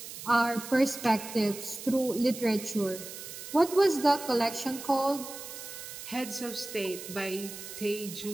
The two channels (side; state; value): right; noise; hiss, 11 dB below the sound